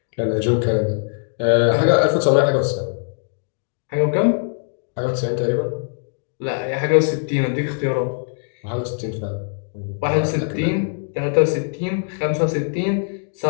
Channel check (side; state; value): right; silent; digital silence